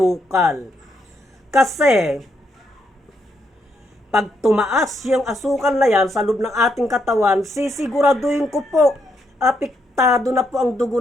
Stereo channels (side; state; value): both; normal; correlation 0.77